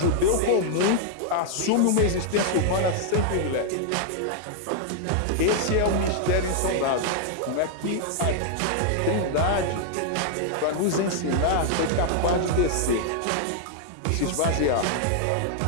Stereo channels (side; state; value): both; different; correlation 0.00